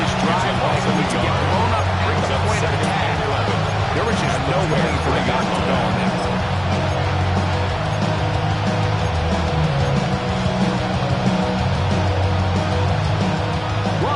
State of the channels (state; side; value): noise; right; hum, 19 dB below the sound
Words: drive, Mike, to get blown up at the point of attack. There was just nowhere for the guy to go on that.